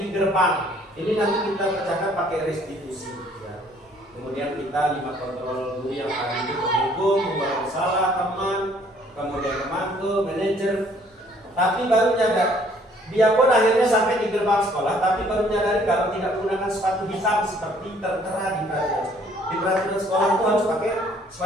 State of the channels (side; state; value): both; normal; correlation 0.60